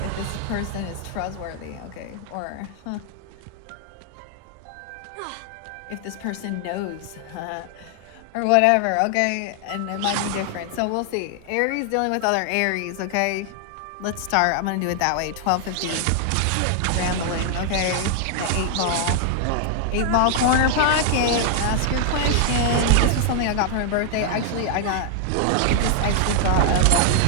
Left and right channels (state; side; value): different; both; correlation 0.00